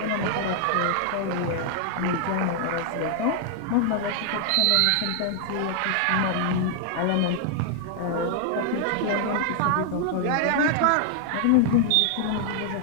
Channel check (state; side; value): different; both; correlation 0.00